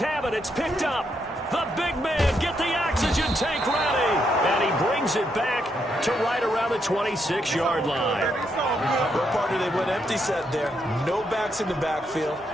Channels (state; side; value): normal; both; correlation 0.78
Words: it. It's picked up. The big man, get the oxygen tank ready. And he brings it back to right around the 26-yard line. Well, partner, they went empty set there. No backs in the backfield.